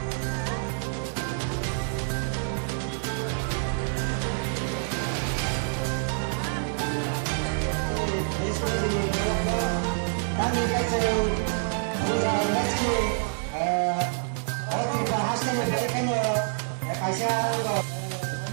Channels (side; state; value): left; silent; 60 dB below the other